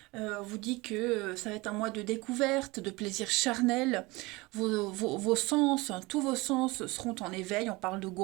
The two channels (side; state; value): left; quieter; 23.0 dB